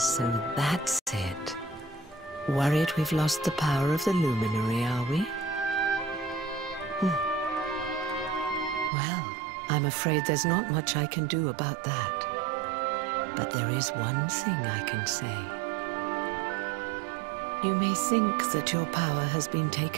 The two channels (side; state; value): left; drops out; at 8.9 s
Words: that's it. Worried we've lost the power of the luminary, are we? Well, I'm afraid there's not much I can do about that. But there is one thing I can say. You may think that your power has been